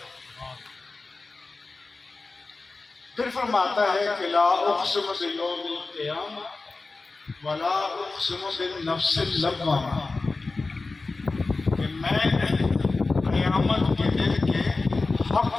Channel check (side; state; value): right; quieter; 3.7 dB